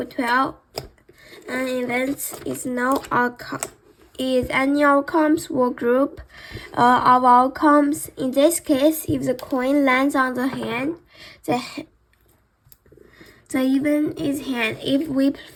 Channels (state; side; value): identical; both; correlation 1.00